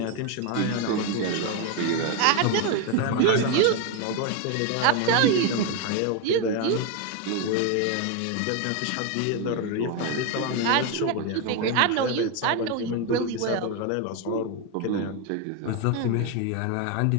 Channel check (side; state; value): both; different; correlation 0.02